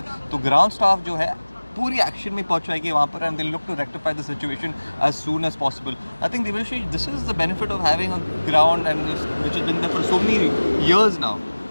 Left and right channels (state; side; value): inverted; both; correlation -1.00